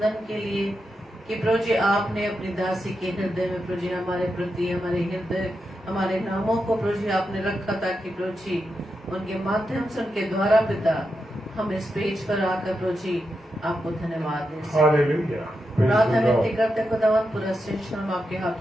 के लिए, कि प्रभु जी आपने अपनी दासी के हृदय में प्रभु जी हमारे प्रति, हमारे हृदय, हमारे नामों को प्रभु जी आपने रखा ताकि प्रभु जी उनके माध्यम से, उनके द्वारा पिता हम इस पेज पर आकर प्रभु जी आपको धन्यवाद दें। प्रार्थना विनती करते खुदावंद पूरा सेशन हम आपके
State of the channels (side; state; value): both; normal; correlation 0.87